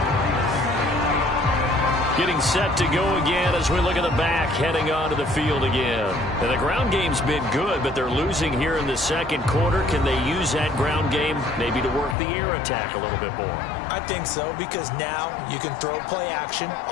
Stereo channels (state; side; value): drops out; right; at 12.2 s